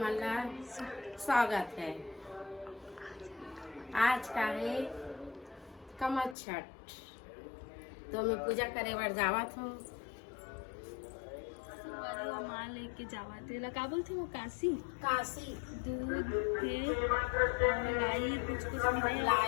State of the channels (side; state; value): right; drops out; at 6.4 s